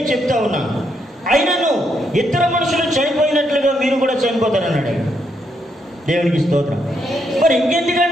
చెప్తా ఉన్నాను. అయినను ఇతర మనుషులు చనిపోయినట్లుగా మీరు కూడా చనిపోతారన్నాడు. దేవునికి స్తోత్రం. మరి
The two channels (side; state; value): both; normal; correlation 0.77